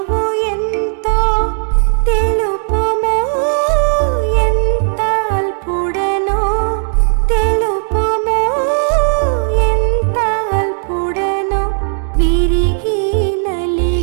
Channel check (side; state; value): left; silent; digital silence